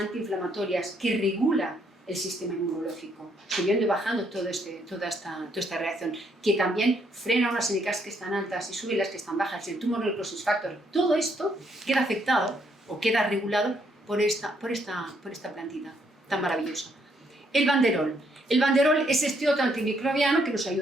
que regula el sistema inmunológico, subiendo y bajando toda esta reacción, que también frena unas NKs que están altas y sube las que están bajas, el tumor necrosis factor. Todo esto queda afectado o queda regulado por esta plantita tan maravillosa. El banderol. El banderol es este otro antimicrobiano que nos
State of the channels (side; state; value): both; normal; correlation 0.72